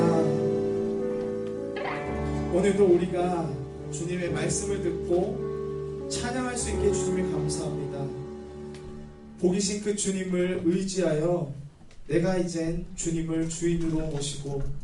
오늘도 우리가 주님의 말씀을 듣고 찬양할 수 있게 주님을 감사합니다. 복이신 그 주님을 의지하여 내가 이젠 주님을 주인으로 모시고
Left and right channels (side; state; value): both; identical; correlation 1.00